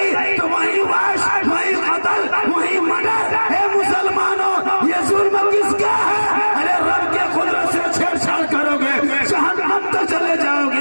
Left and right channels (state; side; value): inverted; both; correlation -1.00